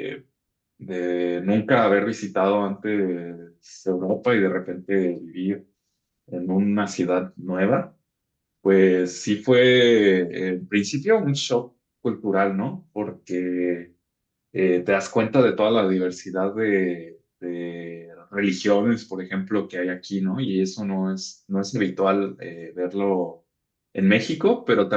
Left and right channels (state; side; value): identical; both; correlation 1.00